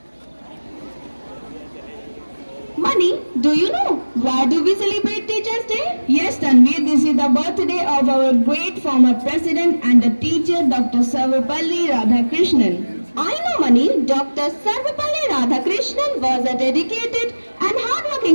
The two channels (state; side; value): inverted; both; correlation -1.00